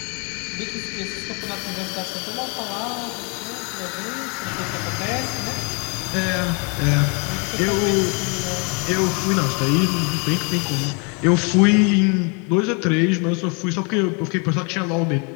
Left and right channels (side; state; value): right; quieter; 34.1 dB